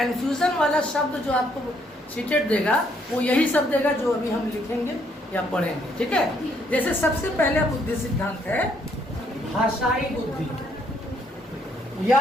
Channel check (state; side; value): normal; both; correlation 0.70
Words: वाला शब्द जो आपको सीटेट देगा वो यही शब्द देगा जो अभी हम लिखेंगे या पढ़ेंगे, ठीक है। जैसे सबसे पहले बुद्धि सिद्धांत है भाषाई बुद्धि, या